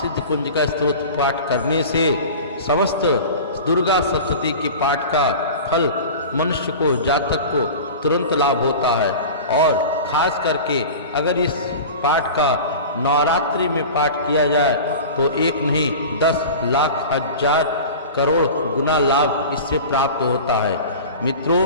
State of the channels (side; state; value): both; inverted; correlation -0.34